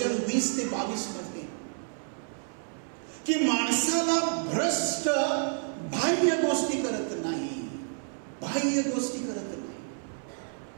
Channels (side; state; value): left; silent; 58 dB below the other